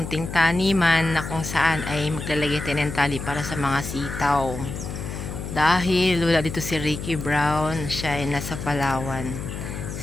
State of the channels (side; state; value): left; noise; hum, 7 dB below the sound